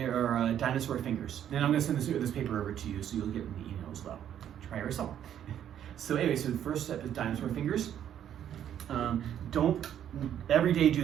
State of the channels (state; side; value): quieter; left; 10.1 dB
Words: Dinosaur Fingers. And I'm going to send this paper over to you so you'll get in the email as well. Try your song. So anyway, so the first step is Dinosaur Fingers. Don't every day do